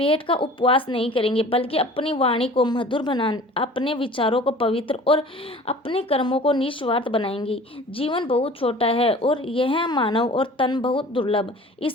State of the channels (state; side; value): normal; both; correlation 0.45